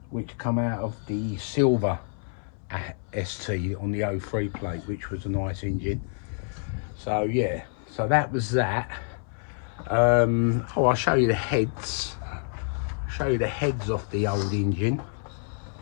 which come out of the silver ST on the 03 plate, which was a nice engine. So yeah, so that was that. Oh, I'll show you the heads. Show you the heads off the old engine.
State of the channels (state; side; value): silent; right; 60 dB below the other